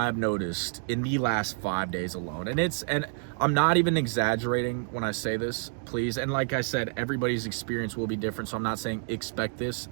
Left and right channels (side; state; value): left; silent; 59 dB below the other